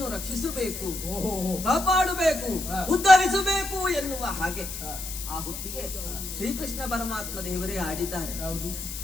ರಕ್ಷಿಸಬೇಕು, ಓಹೋ ಓಹೋ. ಕಾಪಾಡಬೇಕು, ಉದ್ಧರಿಸಬೇಕು ಎನ್ನುವ ಹಾಗೆ. ಆ ಹೊತ್ತಿಗೆ ಶ್ರೀಕೃಷ್ಣ ಪರಮಾತ್ಮ ದೇವರೇ ಆಡಿದ್ದಾರೆ, ಯಾವುದು?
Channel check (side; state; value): left; noise; hiss, 8 dB below the sound